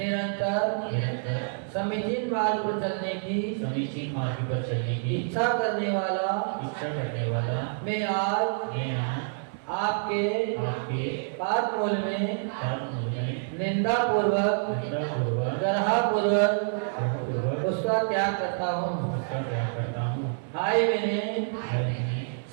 समीचीन मार्ग पर चलने की इच्छा करने वाला मैं आज आपके पाद मूल में निंदा पूर्वक गर्हा उसका त्याग करता हूँ। हाय मैंने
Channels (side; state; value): left; silent; digital silence